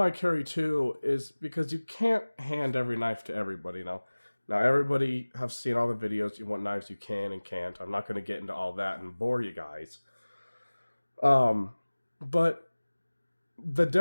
I carry two is because you can't hand every knife to everybody now. Now, everybody have seen all the videos, what knives you can and can't. I'm not going to get into all that and bore you guys. But the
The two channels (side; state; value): both; inverted; correlation -1.00